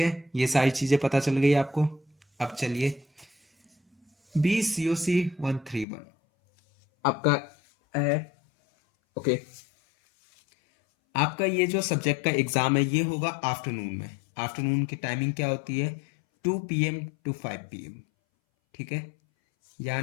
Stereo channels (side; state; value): right; drops out; at 5.9 s